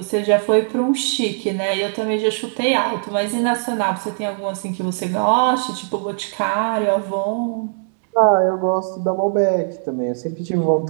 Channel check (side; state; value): left; silent; 65 dB below the other